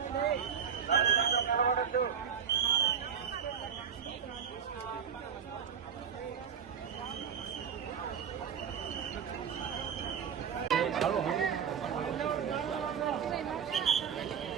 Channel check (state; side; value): quieter; left; 7.6 dB